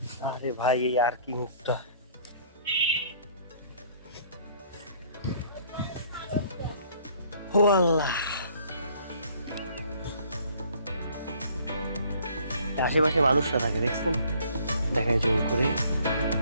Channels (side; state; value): both; inverted; correlation -0.58